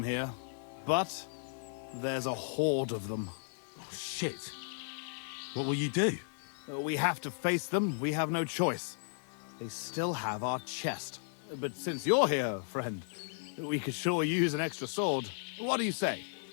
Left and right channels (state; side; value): silent; right; digital silence